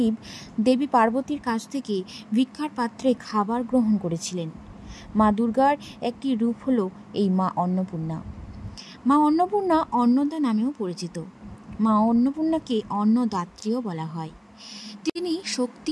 দেবী পার্বতীর কাছ থেকে ভিক্ষার পাত্রে খাবার গ্রহণ করেছিলেন। মা দুর্গার একটি রূপ হলো এই মা অন্নপূর্ণা। মা অন্নপূর্ণা অন্নদা নামেও পরিচিত। মা অন্নপূর্ণাকে অন্নদাত্রীও বলা হয়। তিনি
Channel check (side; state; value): both; identical; correlation 1.00